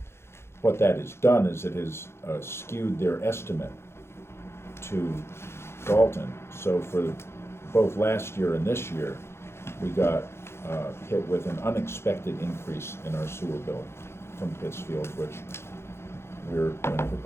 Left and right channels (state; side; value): late; right; 0.12 ms